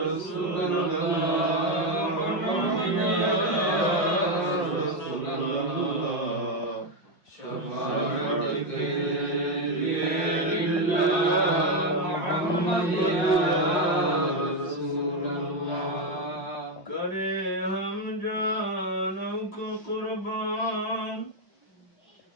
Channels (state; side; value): late; right; 5.7 ms